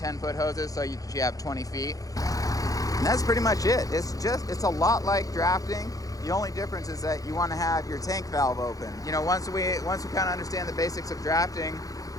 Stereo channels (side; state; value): right; late; 0.17 ms